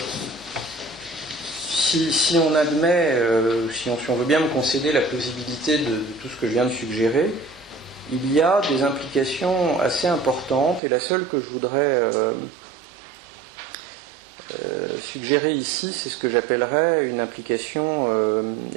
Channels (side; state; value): left; drops out; at 10.8 s